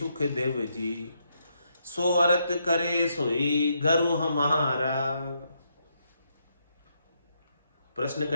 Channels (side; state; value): both; inverted; correlation -0.78